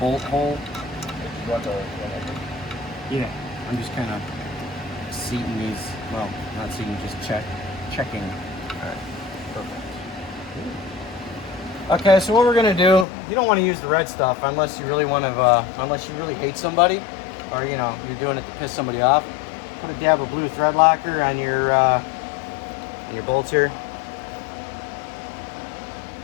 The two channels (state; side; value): drops out; right; at 13.1 s